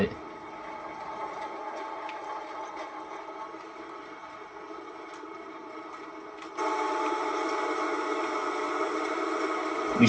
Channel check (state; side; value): identical; both; correlation 1.00